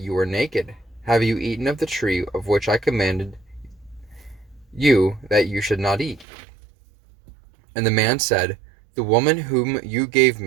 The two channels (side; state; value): left; drops out; at 6.2 s